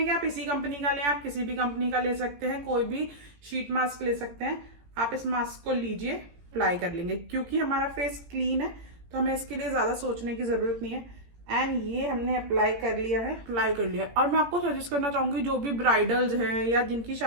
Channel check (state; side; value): late; left; 17 ms